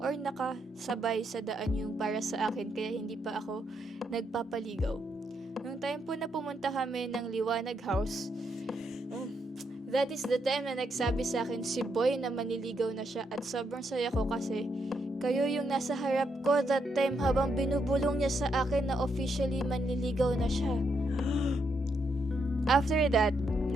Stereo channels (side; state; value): both; normal; correlation 0.79